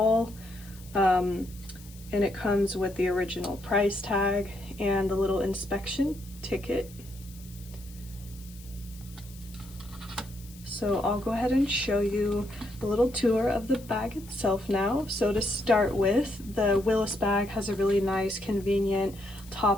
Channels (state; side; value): noise; left; hiss, 21 dB below the sound